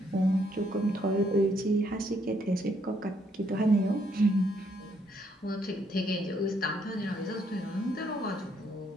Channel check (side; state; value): both; normal; correlation 0.71